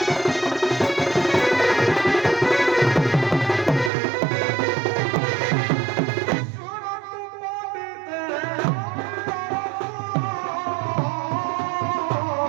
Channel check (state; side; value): drops out; left; at 3.9 s